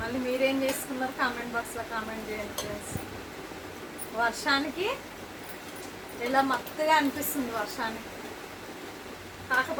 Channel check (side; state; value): both; identical; correlation 1.00